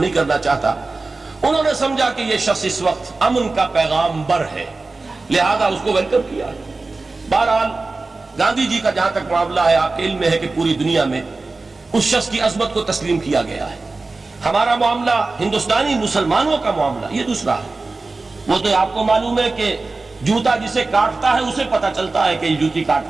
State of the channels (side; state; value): left; quieter; 3.6 dB